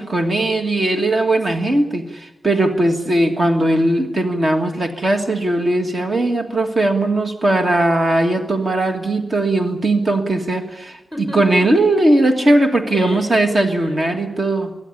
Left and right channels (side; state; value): both; normal; correlation 0.89